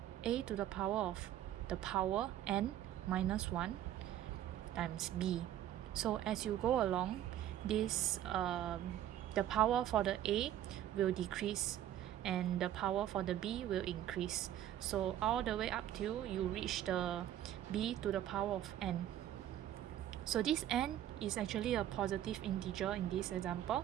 a to the power of the power n minus 1 times b. So as you go along, this the power for the a will decrease and the power for the b will increase. So all the way up till you reach the b to the power of n. So this n is actually a positive integer in this example.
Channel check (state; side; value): quieter; left; 11.8 dB